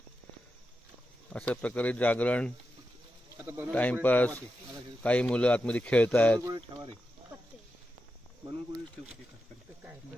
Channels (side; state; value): both; normal; correlation 0.89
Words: अशा प्रकारे जागरण, टाइमपास. काही मुलं आतमध्ये खेळत आहेत.